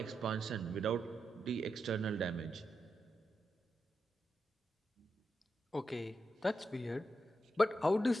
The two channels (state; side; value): normal; both; correlation 0.86